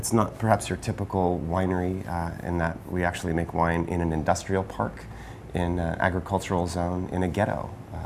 not perhaps your typical winery in that we actually make wine in an industrial park, in an agricultural zone, in a ghetto.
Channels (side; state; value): both; identical; correlation 1.00